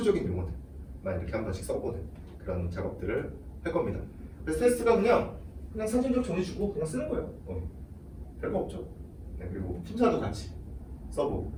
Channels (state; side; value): identical; both; correlation 1.00